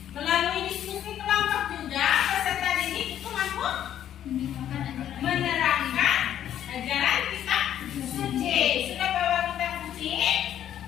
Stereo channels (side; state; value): right; quieter; 10.7 dB